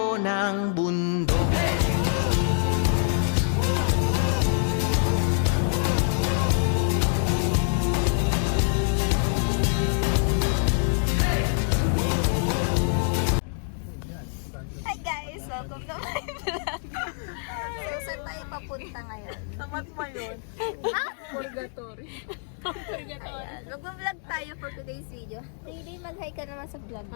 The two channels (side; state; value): right; silent; 61 dB below the other